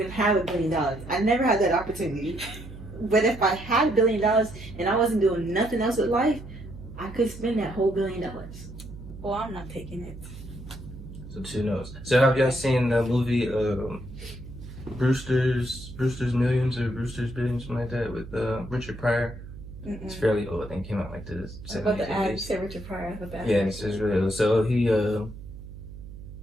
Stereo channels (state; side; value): noise; right; hum, 14 dB below the sound